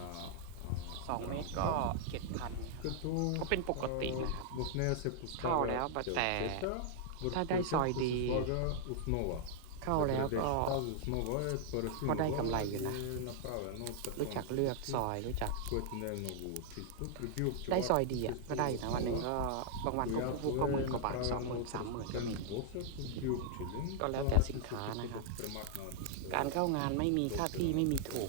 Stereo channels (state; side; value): different; both; correlation 0.00